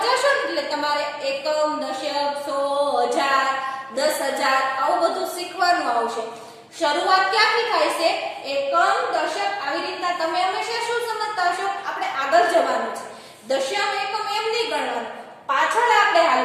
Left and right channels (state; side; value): identical; both; correlation 1.00